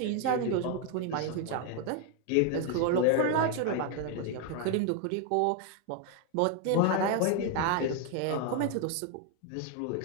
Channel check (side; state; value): both; different; correlation 0.01